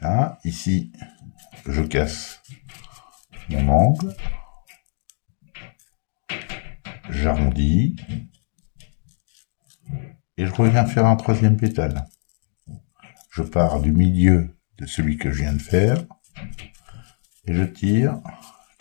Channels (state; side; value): silent; right; 63 dB below the other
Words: Là, ici, je casse mon angle. J'arrondis. Et je reviens faire un troisième pétale. Je pars du milieu de celui que je viens de faire. Et je tire